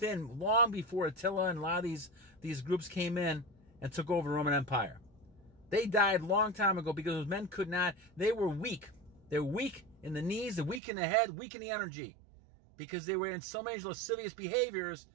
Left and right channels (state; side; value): drops out; left; at 10.8 s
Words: long before Attila and a lot of these groups came in and took over the Roman Empire. They died a long time ago because those men could not, they were weak. They were weak in the knees, they're weak in the head, weak in the energy. Because they were in so many lascivious behaviors,